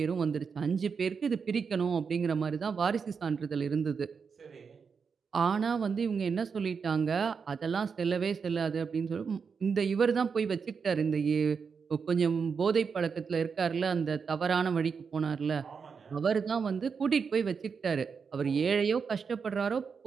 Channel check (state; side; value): quieter; left; 5.8 dB